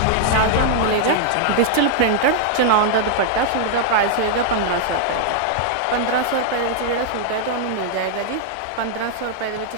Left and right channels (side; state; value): both; different; correlation -0.01